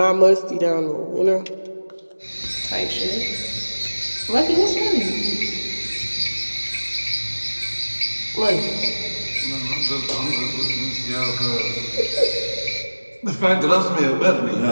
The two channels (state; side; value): inverted; both; correlation -1.00